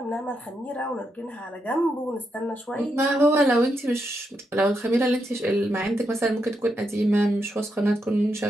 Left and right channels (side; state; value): both; normal; correlation 0.82